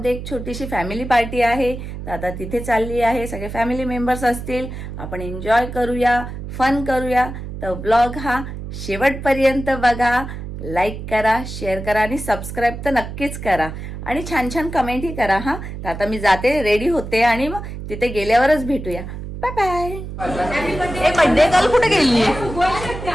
एक छोटीशी फॅमिली पार्टी आहे. तर आता तिथे चालली आहे, सगळे फॅमिली मेंबर्स असतील. आपण एन्जॉय करूया, फन करूया. तर ब्लॉग हा शेवटपर्यंत बघा. लाईक करा, शेअर करा आणि सबस्क्राईब तर नक्कीच करा. आणि छान छान कमेंटही करा. हा, तर आता मी जाते, रेडी होते आणि मग तिथे गेल्यावरच भेटूया. Bye bye. ए, बर्थडे गर्ल कुठे गेली?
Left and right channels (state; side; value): noise; right; hum, 9 dB below the sound